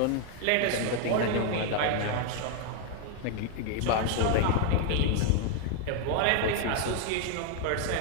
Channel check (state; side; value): different; both; correlation 0.00